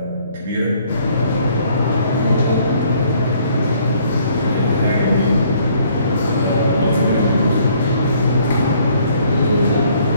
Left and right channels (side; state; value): both; inverted; correlation -0.63